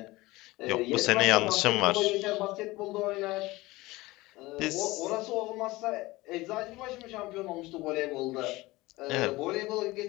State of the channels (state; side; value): quieter; right; 20.3 dB